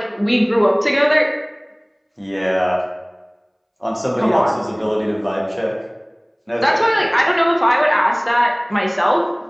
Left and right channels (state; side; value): identical; both; correlation 1.00